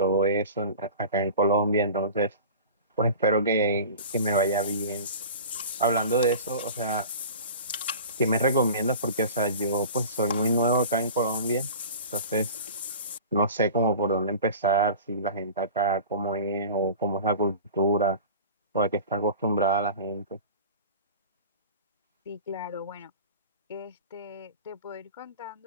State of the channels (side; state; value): both; inverted; correlation -0.38